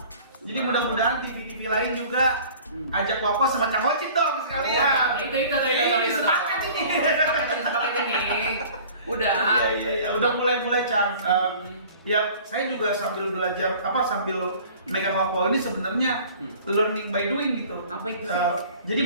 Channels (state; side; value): inverted; both; correlation -0.47